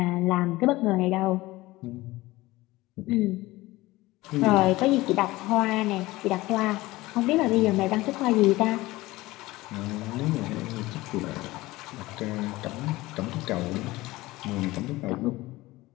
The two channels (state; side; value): quieter; right; 19.2 dB